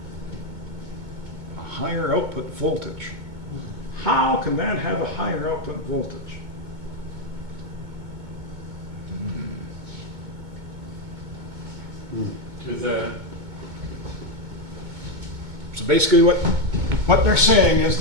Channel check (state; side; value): late; left; 2.2 ms